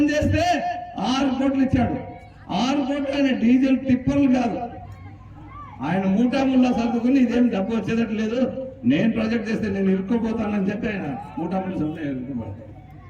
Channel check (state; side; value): identical; both; correlation 1.00